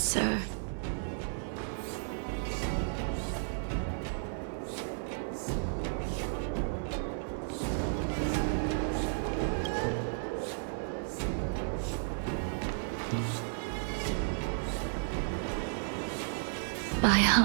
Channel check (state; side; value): silent; left; 56 dB below the other